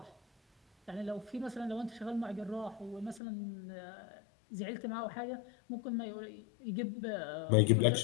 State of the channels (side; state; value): right; drops out; at 3.2 s